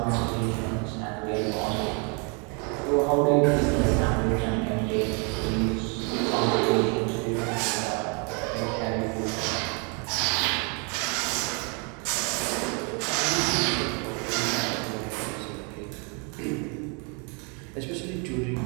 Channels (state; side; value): quieter; left; 35.3 dB